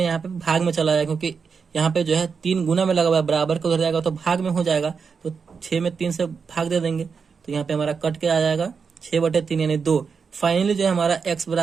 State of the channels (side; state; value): left; quieter; 5.7 dB